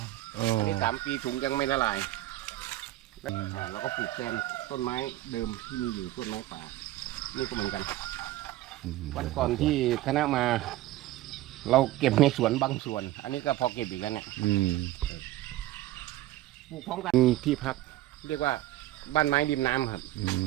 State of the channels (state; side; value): quieter; left; 15.6 dB